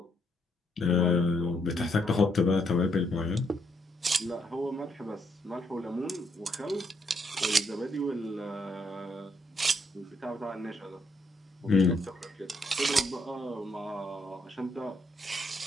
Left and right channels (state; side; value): normal; both; correlation 0.74